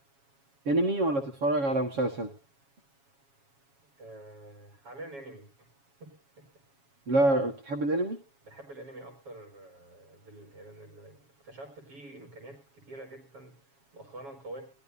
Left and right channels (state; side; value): late; left; 7.3 ms